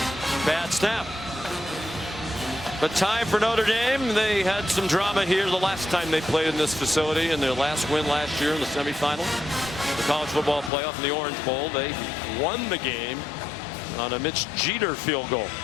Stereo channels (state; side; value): drops out; right; at 10.7 s